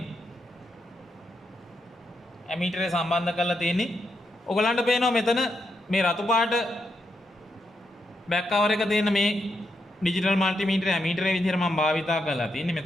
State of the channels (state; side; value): normal; both; correlation 0.82